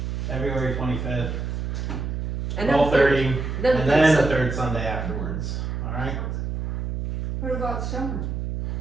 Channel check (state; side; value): noise; right; hum, 3 dB below the sound